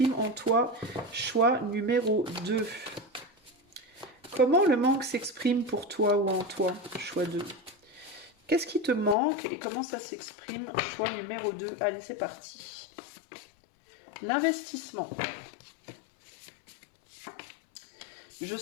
en toi? Choix numéro 2. Comment le manque s'exprime pour toi ou en toi? Choix 2. Qu'est-ce qui te manque et comment ça s'exprime? Choix numéro 2. Allez, c'est parti. L'investissement. Je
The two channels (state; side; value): drops out; right; at 9.2 s